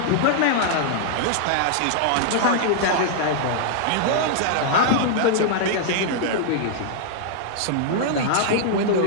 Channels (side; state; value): both; different; correlation -0.01